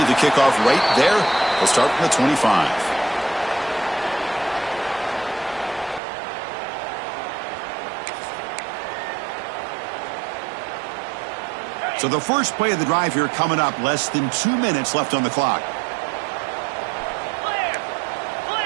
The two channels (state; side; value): drops out; left; at 6.0 s